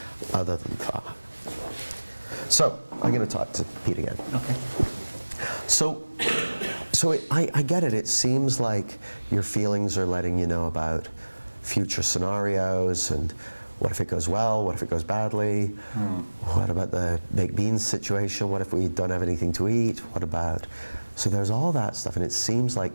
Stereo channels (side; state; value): both; inverted; correlation -1.00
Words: other than thought. So I'm going to talk to Pete again. Okay. So I get it. It seems like your feelings are letting you know about future scenarios and what if it goes well? What if it goes badly? What about the baked beans situation? What if we don't have anything to eat? What about? So there's all that stuff, and it seems